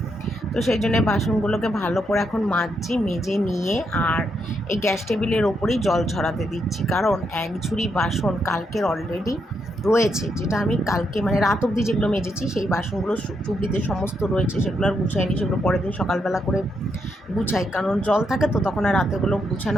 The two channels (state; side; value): normal; both; correlation 0.79